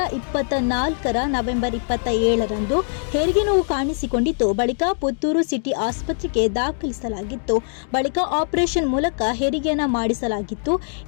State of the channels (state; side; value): silent; right; digital silence